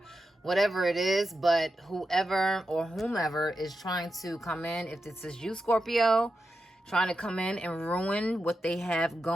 whatever it is. But whoever or whomever is trying to come in, if this is you, Scorpio, trying to come in and ruin what they have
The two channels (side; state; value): both; normal; correlation 0.88